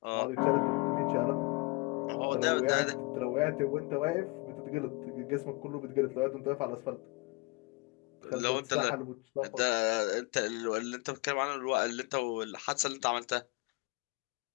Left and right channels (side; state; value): right; quieter; 26.6 dB